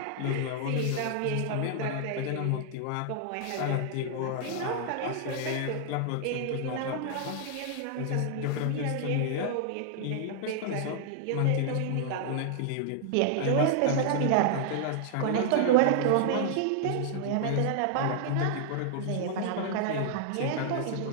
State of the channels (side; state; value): both; different; correlation -0.01